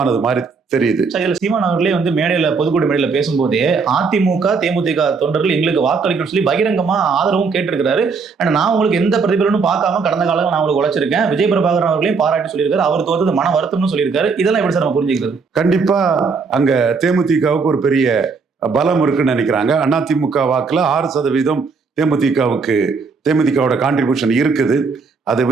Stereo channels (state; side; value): quieter; left; 4.9 dB